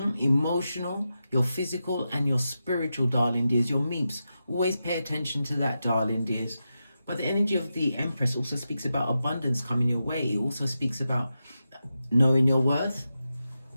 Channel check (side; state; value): both; inverted; correlation -0.90